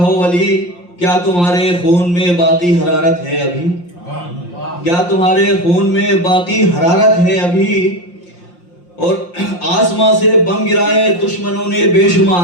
वली, क्या तुम्हारे खून में बाकी हरारत है अभी, क्या तुम्हारे खून में बाकी हरारत है अभी। और आसमां से बम गिराए दुश्मनों ने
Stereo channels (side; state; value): right; late; 5.7 ms